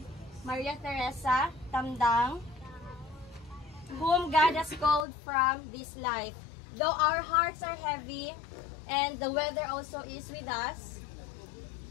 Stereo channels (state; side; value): drops out; right; at 5.1 s